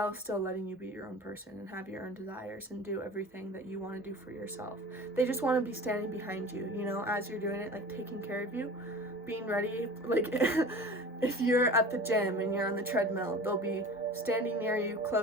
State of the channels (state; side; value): normal; both; correlation 0.38